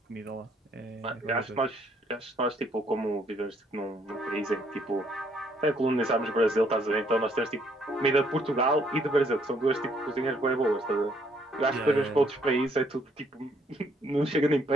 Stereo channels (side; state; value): both; normal; correlation 0.68